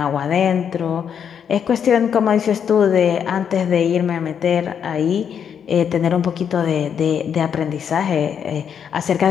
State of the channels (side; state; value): right; quieter; 7.9 dB